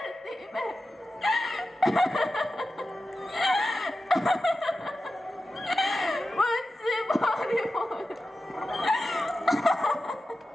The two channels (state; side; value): normal; both; correlation 0.93